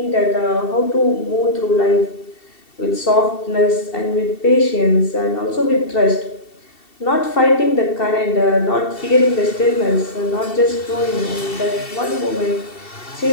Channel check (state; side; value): late; right; 2.7 ms